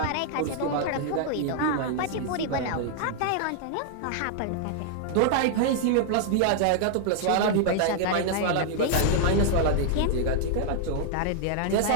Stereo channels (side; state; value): both; different; correlation -0.01